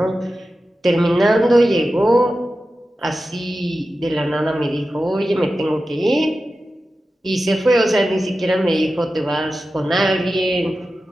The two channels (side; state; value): both; normal; correlation 0.93